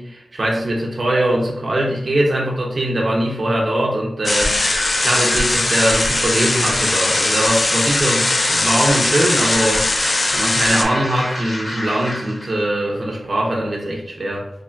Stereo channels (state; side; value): normal; both; correlation 0.94